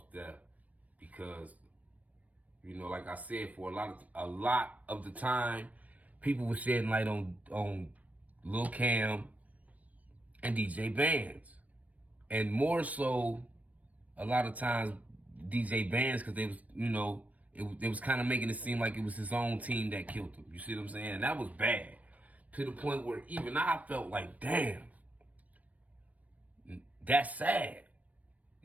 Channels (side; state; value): left; late; 0.074 ms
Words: death, because, you know, like I said, for a lot of the time, people were shedding light on Lil Cam and DJ Bandz, and more so a lot of times DJ Bandz, because they was, you know, it was kind of making it seem like it was his own team that killed him. You see what I'm saying? And that was bad, to the point where even I felt like, damn, that's sad.